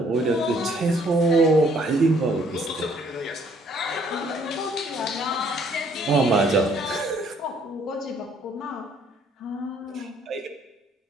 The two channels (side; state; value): both; normal; correlation 0.63